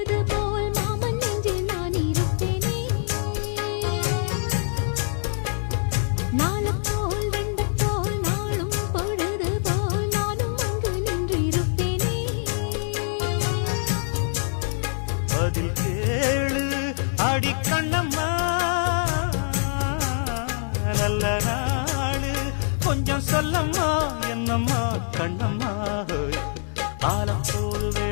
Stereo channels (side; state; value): right; silent; digital silence